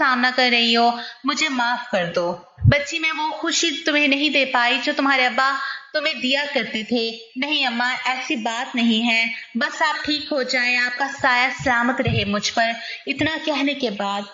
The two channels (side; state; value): both; identical; correlation 1.00